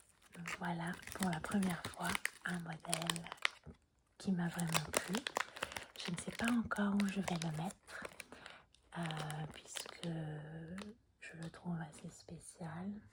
Donc voilà pour la première fois un modèle qui m'a vraiment plu. Je ne sais pas encore où je vais le mettre puisque je le trouve assez spécial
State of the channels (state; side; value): identical; both; correlation 1.00